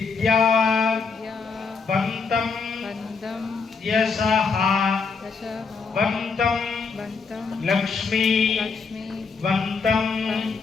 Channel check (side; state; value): right; quieter; 4.9 dB